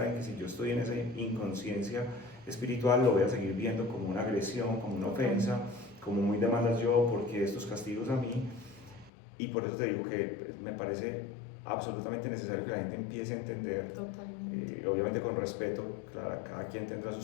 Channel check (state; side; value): drops out; right; at 9.1 s